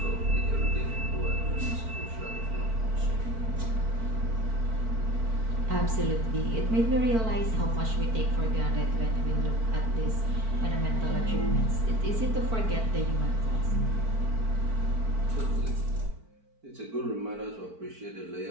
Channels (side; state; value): left; late; 4.5 ms